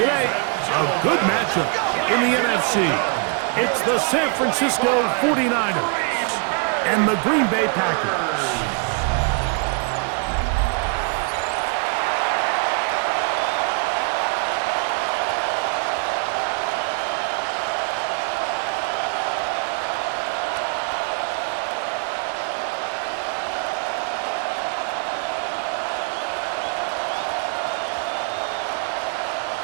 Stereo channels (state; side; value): quieter; left; 38.5 dB